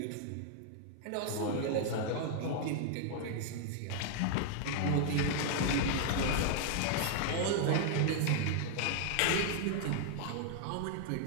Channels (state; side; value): different; both; correlation 0.00